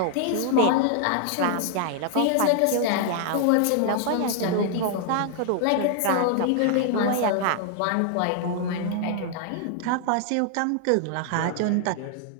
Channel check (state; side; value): different; both; correlation 0.00